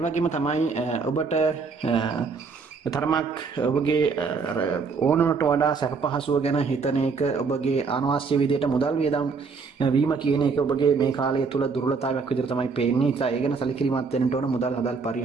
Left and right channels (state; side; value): quieter; left; 4.9 dB